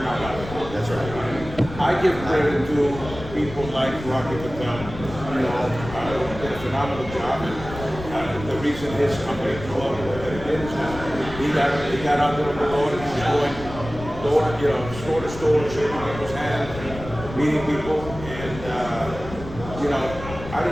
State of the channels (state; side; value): noise; left; rumble, 11 dB below the sound